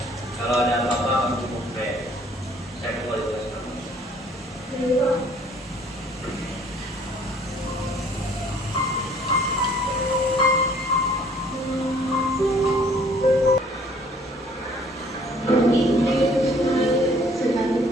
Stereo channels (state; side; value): normal; both; correlation 0.58